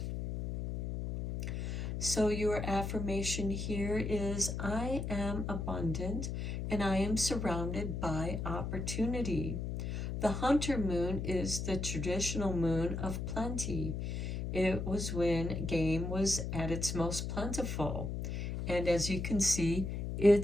So your affirmation here is, I am abundant and I am surrounded by opportunity. The hunter moon is the traditional moon of plenty. It was when game was at its most plentiful. And as you can see,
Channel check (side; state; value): left; noise; hum, 3 dB below the sound